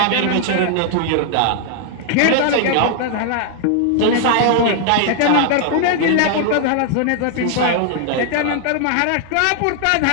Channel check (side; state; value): both; different; correlation 0.00